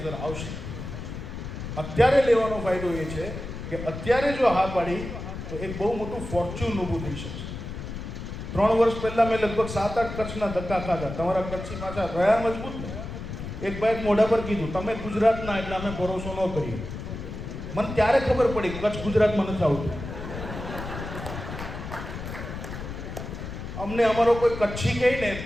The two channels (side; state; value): left; noise; rumble, 8 dB below the sound